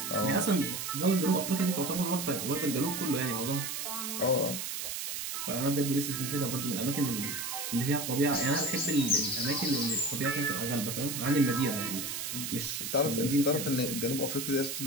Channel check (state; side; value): noise; right; hiss, 4 dB below the sound